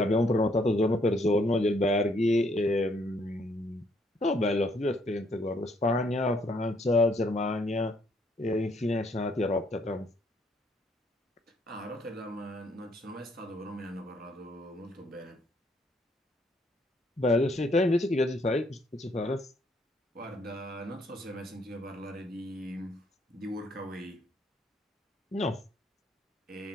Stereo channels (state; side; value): normal; both; correlation 0.69